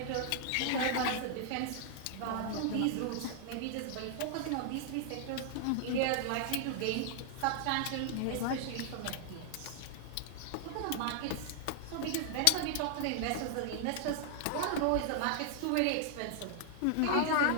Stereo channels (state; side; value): different; both; correlation 0.00